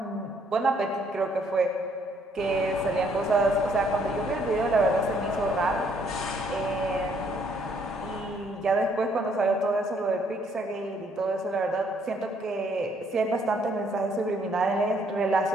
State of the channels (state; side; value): normal; both; correlation 0.67